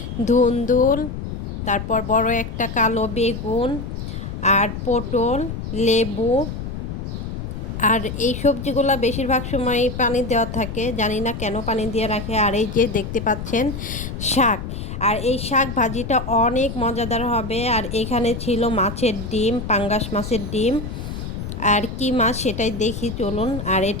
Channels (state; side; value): noise; left; rumble, 7 dB below the sound